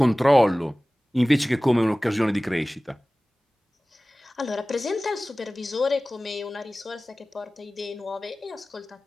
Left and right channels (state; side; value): normal; both; correlation 0.98